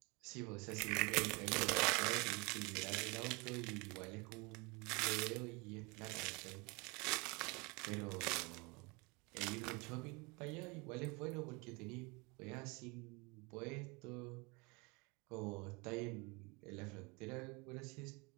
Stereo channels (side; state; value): left; quieter; 28.0 dB